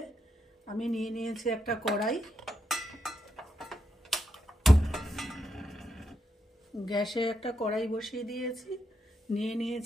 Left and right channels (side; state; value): both; normal; correlation 0.82